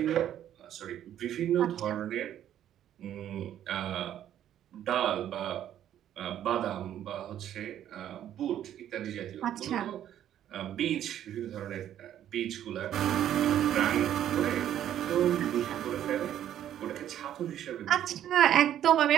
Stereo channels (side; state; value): left; quieter; 11.0 dB